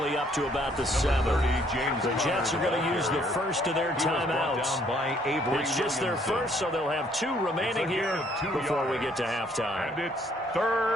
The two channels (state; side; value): normal; both; correlation 0.65